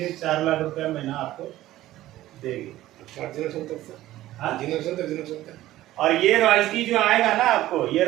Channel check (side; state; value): left; quieter; 15.1 dB